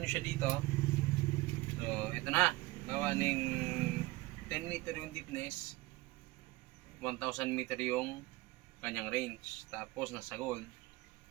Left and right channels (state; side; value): quieter; left; 20.7 dB